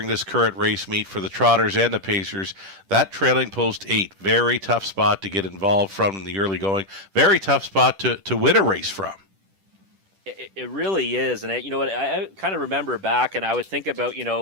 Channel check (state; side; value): late; left; 10 ms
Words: this current race meet for the Trotters and the Pacers. That trailing post 8, very tough spot to get involved from in the early going. Very tough spot to win a race from. It really is. And you know what? I kind of remember back and I would think about,